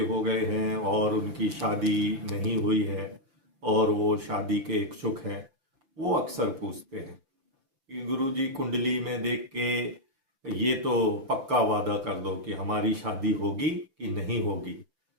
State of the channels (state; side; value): late; left; 5.9 ms